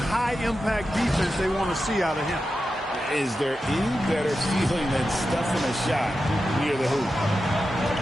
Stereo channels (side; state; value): both; normal; correlation 0.91